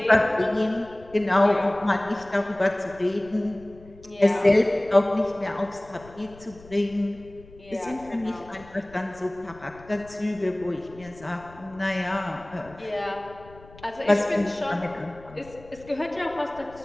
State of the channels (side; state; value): left; noise; rumble, 22 dB below the sound